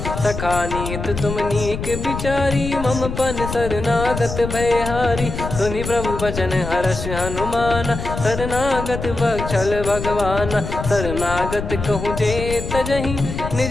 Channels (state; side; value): noise; left; rumble, 6 dB below the sound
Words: सखा नीत तुम नीक बिचारी, मम पन शरणागत भयहारी। सुनि प्रभु बचन हर्ष हनुमाना, शरणागत बक्षल भगवाना। शरणागत कहूँ जे तजहि,